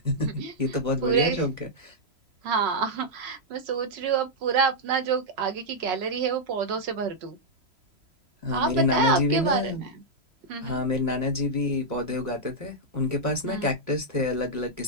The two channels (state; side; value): late; left; 3.0 ms